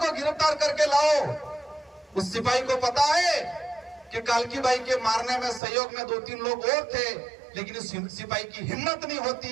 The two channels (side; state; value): left; drops out; at 5.6 s